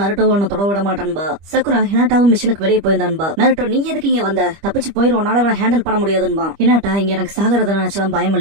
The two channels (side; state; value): left; late; 25 ms